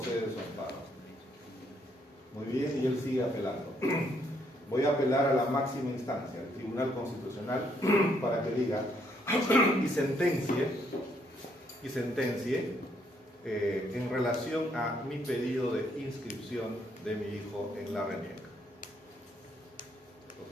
su amparo. Muy bien, y él sigue apelando. Voy a apelar a la máxima instancia, el Tribunal Constitucional, para que diga y sentencie en relación a mi pedido de inscripción de mi hijo en la RENIEC.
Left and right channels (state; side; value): normal; both; correlation 0.71